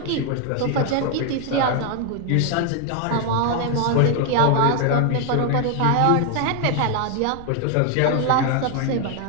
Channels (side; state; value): both; different; correlation 0.00